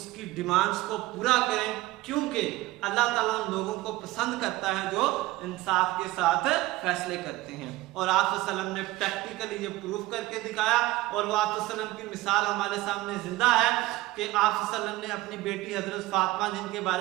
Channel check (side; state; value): left; quieter; 18.4 dB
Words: डिमांड्स को पूरा करें, क्योंकि अल्लाह ताला उन लोगों को पसंद करता है जो इंसाफ के साथ फैसले करते हैं। और आप सल्लम ने प्रैक्टिकली ये प्रूफ करके दिखाया और वो आप सल्लम की मिसाल हमारे सामने जिंदा है कि आप सल्लम ने अपनी बेटी हजरत फातिमा, जिनके